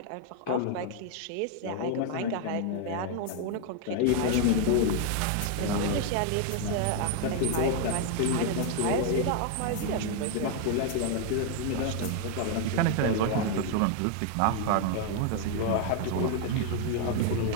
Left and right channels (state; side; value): different; both; correlation 0.00